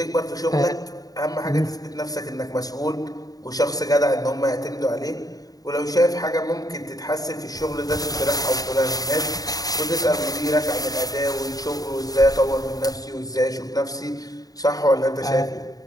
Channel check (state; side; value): late; right; 0.18 ms